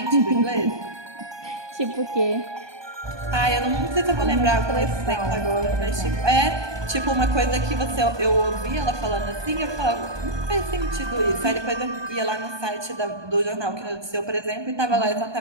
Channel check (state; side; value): late; left; 1.2 ms